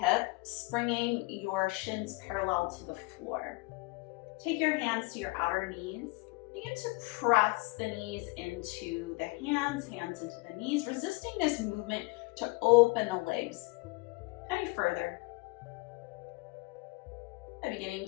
bringing your shins parallel to the floor. Take your hands to your outer knees. Begin to press the knees into the hands into the knees, resisting this movement to open the legs any further. And beginning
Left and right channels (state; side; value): quieter; right; 25.6 dB